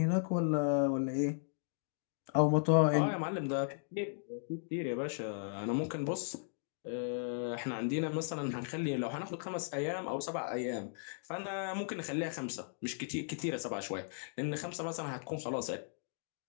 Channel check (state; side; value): silent; right; digital silence